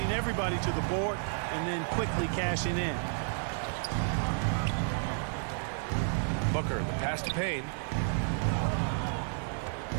everybody to the board and then quickly cashing in. Booker, the pass to Payne.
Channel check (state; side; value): silent; left; 57 dB below the other